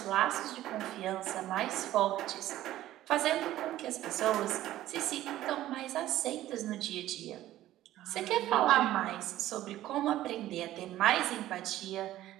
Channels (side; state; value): left; quieter; 14.2 dB